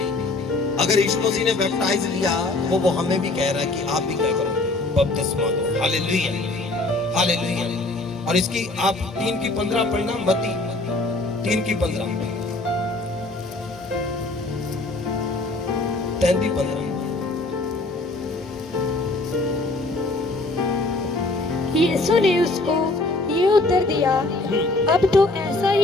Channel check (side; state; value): right; quieter; 3.0 dB